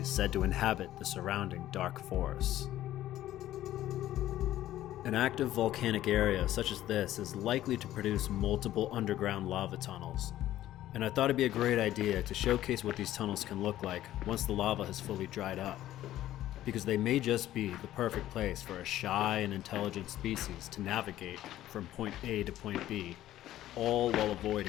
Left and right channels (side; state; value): right; quieter; 13.6 dB